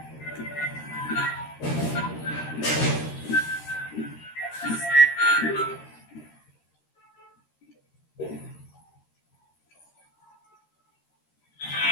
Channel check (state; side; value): late; right; 13 ms